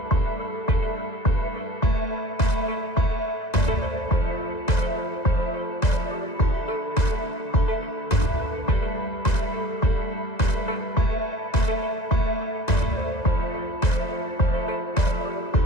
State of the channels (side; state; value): right; late; 1.9 ms